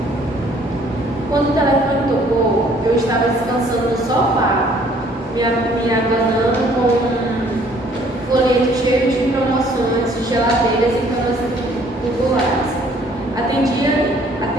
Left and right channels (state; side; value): normal; both; correlation 0.60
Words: Quando o telefone tocou, eu estava descansando no sofá, me abanando com um folheto cheio de promoções de geladeiras e camas populares. Atendia